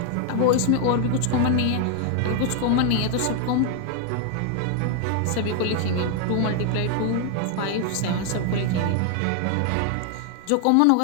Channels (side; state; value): both; different; correlation 0.00